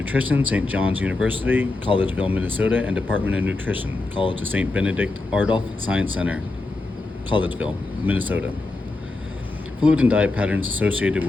St. John's University, Collegeville, Minnesota, and Department of Nutrition, College of St. Benedict Ardolph Science Center, Collegeville, Minnesota. Fluid and diet patterns associated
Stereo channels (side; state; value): right; quieter; 3.2 dB